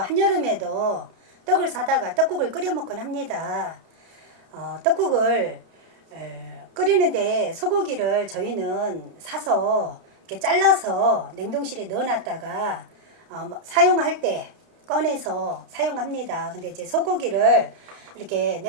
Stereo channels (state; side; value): late; left; 31 ms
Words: 떡을 사다가 떡국을 끓여 먹곤 합니다. 떡국을 끓이는데 소고기를 저희는 사서 이렇게 잘라서 냉동실에 넣어놨다가 사용할 때 꺼내서 사용합니다. 근데 이제 소고기를 이렇게